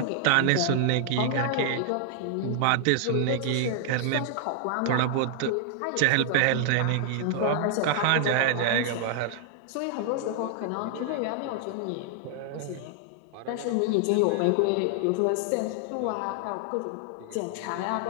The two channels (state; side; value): different; both; correlation 0.00